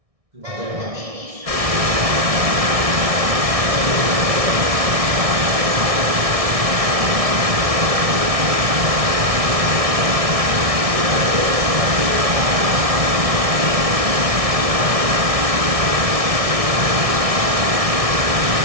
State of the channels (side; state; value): left; late; 1.6 ms